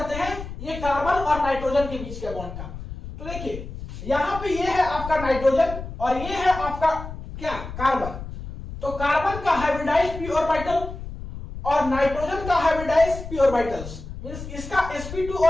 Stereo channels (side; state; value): left; noise; rumble, 10 dB below the sound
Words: हैं ये कार्बन और नाइट्रोजन के बीच के बॉन्ड का। तो देखिए यहाँ पे ये है आपका नाइट्रोजन और ये है आपका क्या, कार्बन। तो कार्बन का हाइब्रिडाइज्ड p ऑर्बिटल और नाइट्रोजन का हाइब्रिडाइज्ड p ऑर्बिटल्स, मींस इसका sp2